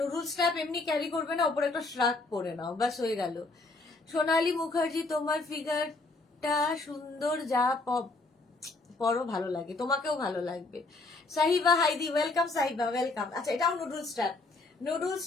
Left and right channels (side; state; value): right; quieter; 3.3 dB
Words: স্ট্র্যাপ এমনি ক্যারি করবে না, ওপরে একটা শ্রাগ পরে নাও, ব্যাস হয়ে গেল। সোনালী মুখার্জি, তোমার ফিগারটা সুন্দর, যা পরো ভালো লাগে, তোমাকেও ভালো লাগবে। সাহিবা হাইদি, ওয়েলকাম সাহিবা, ওয়েলকাম। আচ্ছা এটাও নুডল স্ট্র্যাপ, নুডল